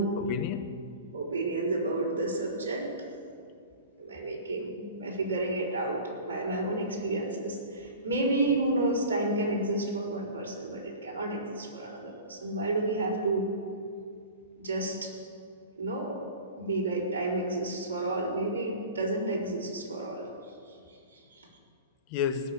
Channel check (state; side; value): inverted; both; correlation -0.38